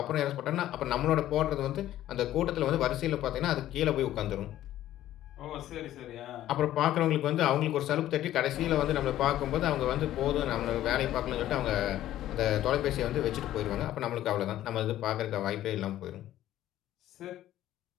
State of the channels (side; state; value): right; quieter; 13.3 dB